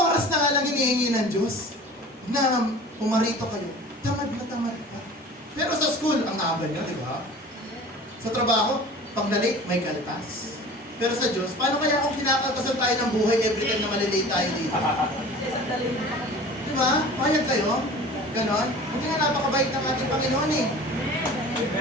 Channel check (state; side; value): normal; both; correlation 0.41